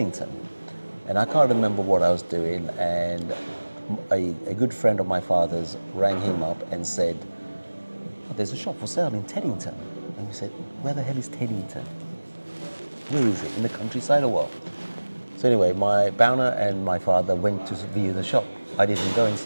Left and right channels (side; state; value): both; inverted; correlation -1.00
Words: And I can't remember what I was doing, and a good friend of my father's rang him up and said, "Oh, there's a shop for sale in Teddington." And we said, "Where the hell is Teddington? Where is it? In the countryside or what?" So anyway, my Bauna and my father went to view the shop. I didn't go and